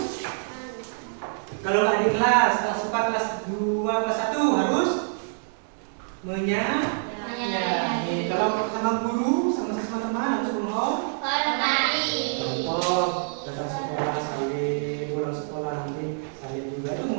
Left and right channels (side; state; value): left; silent; digital silence